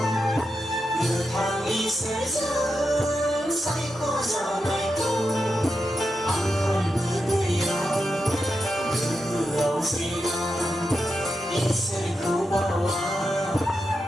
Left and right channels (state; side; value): normal; both; correlation 0.87